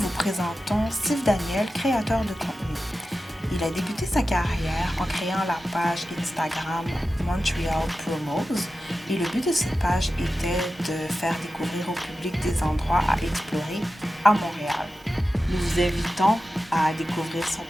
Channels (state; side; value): normal; both; correlation 0.93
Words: présentons Steve Daniel, créateur de contenu. Il a débuté sa carrière en créant la page Instagram Montreal Promos et le but de cette page était de faire découvrir au public des endroits à explorer à Montréal. Nous vous invitons à découvrir son